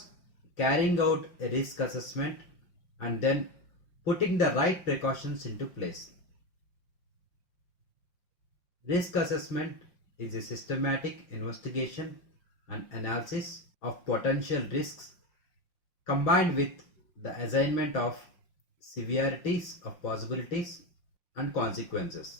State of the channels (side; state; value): right; late; 5.7 ms